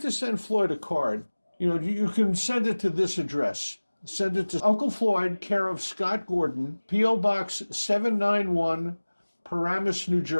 to send Floyd a card, you can send it to this address. Send it to Uncle Floyd, care of Scott Gordon, P.O. Box 791, Paramus, New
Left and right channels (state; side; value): inverted; both; correlation -1.00